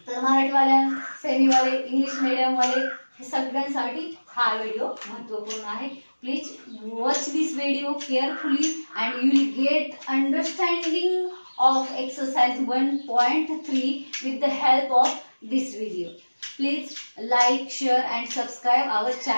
तर मराठी वाले, सेमी वाले, इंग्लिश मीडियम वाले सगळ्यांसाठी हा व्हिडिओ महत्त्वपूर्ण आहे। Please watch this video carefully and you will get understanding of exercise 1.3 with the help of this video. Please like, share and subscribe our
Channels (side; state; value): both; inverted; correlation -1.00